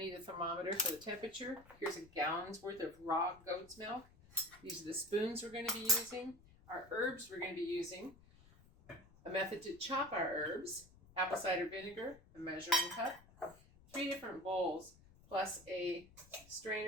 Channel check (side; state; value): left; noise; rumble, 24 dB below the sound